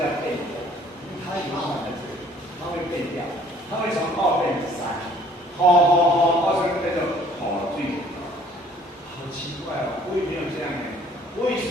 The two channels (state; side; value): normal; both; correlation 0.56